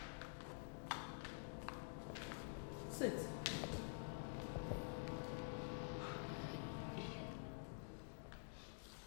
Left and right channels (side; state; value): right; silent; digital silence